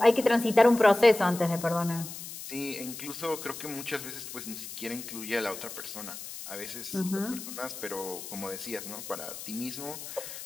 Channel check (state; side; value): noise; left; hiss, 10 dB below the sound